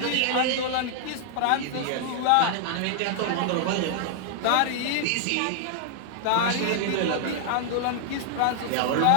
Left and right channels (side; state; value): both; different; correlation -0.01